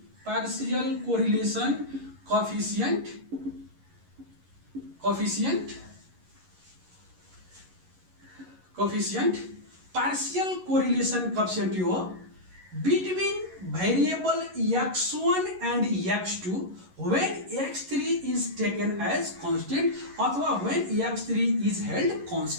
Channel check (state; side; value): late; left; 11 ms